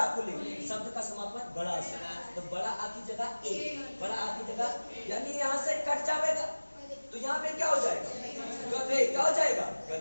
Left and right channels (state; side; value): inverted; both; correlation -1.00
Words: पुल्लिंग। शब्द का समापन बड़ा से, तो बड़ा आ की जगह ए, बड़ा आ की जगह, यानी यहाँ से कट जाएगा, तो यहाँ पे क्या हो जाएगा? गधे। क्या हो जाएगा?